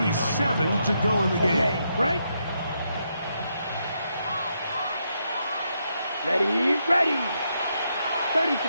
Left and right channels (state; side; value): inverted; both; correlation -0.80